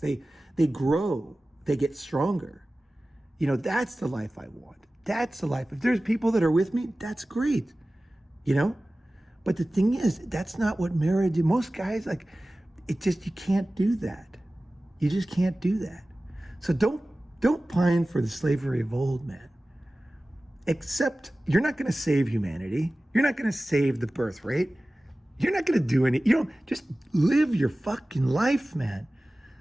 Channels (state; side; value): normal; both; correlation 0.97